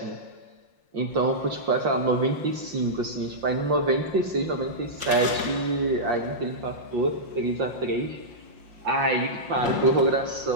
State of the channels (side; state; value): left; late; 5.7 ms